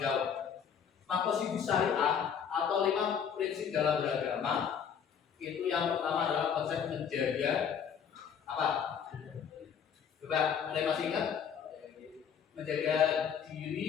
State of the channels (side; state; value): right; quieter; 7.6 dB